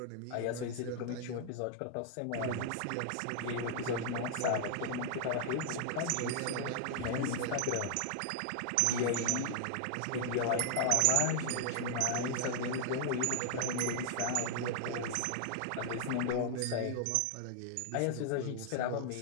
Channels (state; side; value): different; both; correlation 0.00